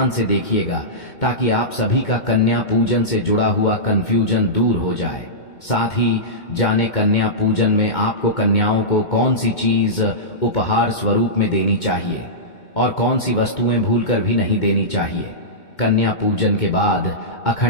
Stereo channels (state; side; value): late; right; 2.2 ms